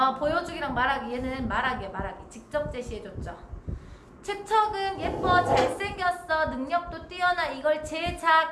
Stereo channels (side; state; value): both; identical; correlation 1.00